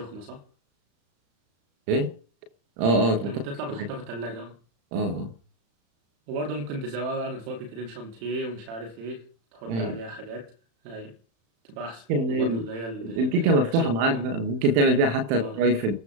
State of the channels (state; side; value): late; left; 35 ms